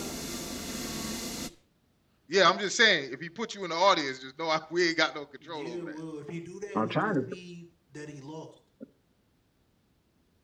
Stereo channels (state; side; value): identical; both; correlation 1.00